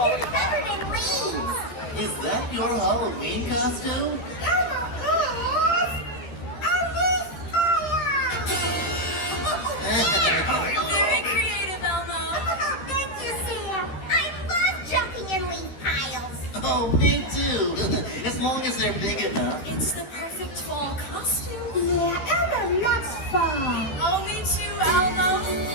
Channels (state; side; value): late; right; 13 ms